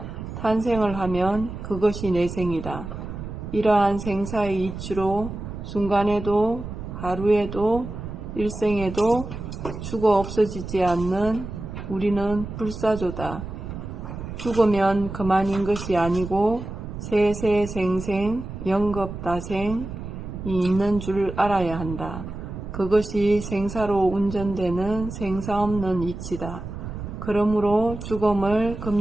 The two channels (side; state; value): right; noise; rumble, 9 dB below the sound